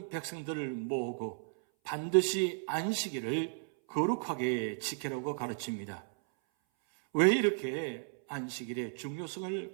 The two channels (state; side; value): silent; left; 55 dB below the other